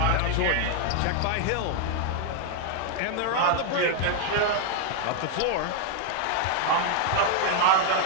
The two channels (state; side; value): different; both; correlation 0.00